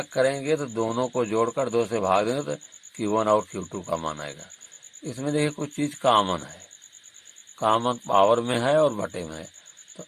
करेंगे तो दोनों को जोड़कर 2 से भाग देंगे तो Q1 और Q2 का मान आएगा। इसमें देखिए कुछ चीज कॉमन है, कॉमन पावर में है और बटे में है। तो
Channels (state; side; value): identical; both; correlation 1.00